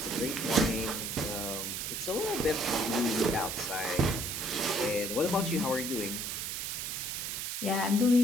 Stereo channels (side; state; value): right; noise; hiss, 3 dB below the sound